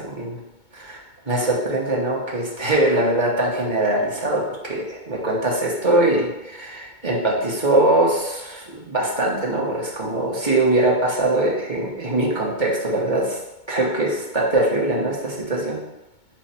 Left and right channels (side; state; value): right; late; 2.2 ms